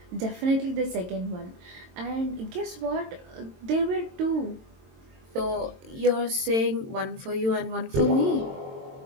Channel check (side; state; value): left; late; 22 ms